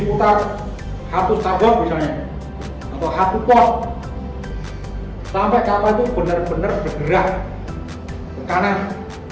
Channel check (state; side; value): identical; both; correlation 1.00